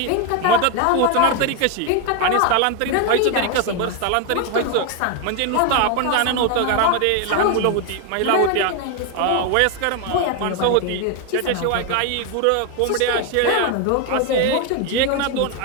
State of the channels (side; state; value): both; different; correlation 0.01